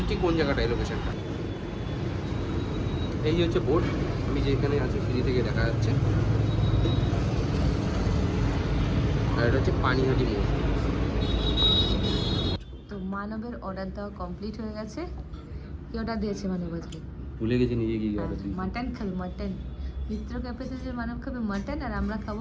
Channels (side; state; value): both; identical; correlation 1.00